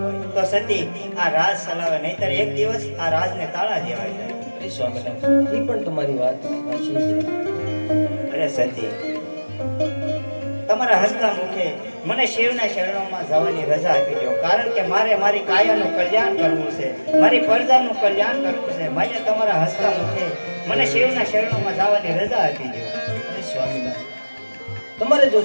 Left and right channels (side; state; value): both; inverted; correlation -1.00